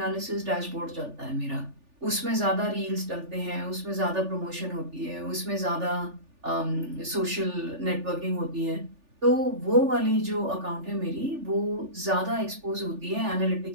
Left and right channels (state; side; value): late; left; 3.4 ms